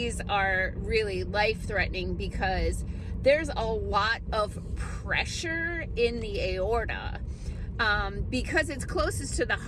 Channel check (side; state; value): both; identical; correlation 1.00